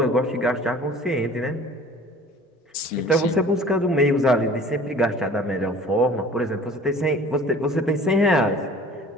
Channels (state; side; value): normal; both; correlation 0.47